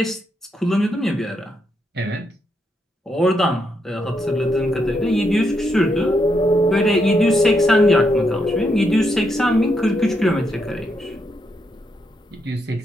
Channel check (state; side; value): normal; both; correlation 0.80